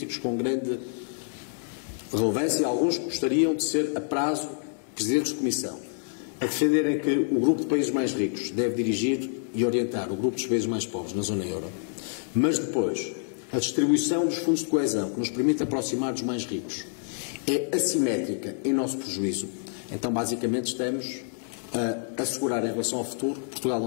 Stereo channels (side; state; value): right; silent; digital silence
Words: com grande relevância, alguns gostariam de ser a prazo presidentes de comissão, a defenderem que o grupo de países mais ricos deve dirigir e orientar o grupo dos países mais pobres na zona euro, mas depois a distribuição dos fundos de coesão, que nos permite aproximar dos mais ricos, é assimétrica em nosso prejuízo. Então, basicamente, estamos a assegurar em relação ao futuro que Portugal não